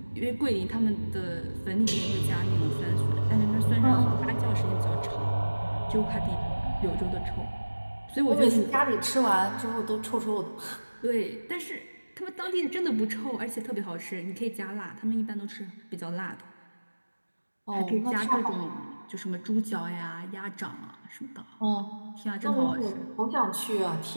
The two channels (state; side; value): inverted; both; correlation -1.00